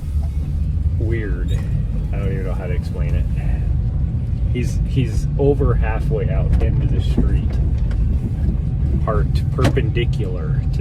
weird. I don't even know how to explain it. He's over halfway out into the street, parked perpendicular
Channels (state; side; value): identical; both; correlation 1.00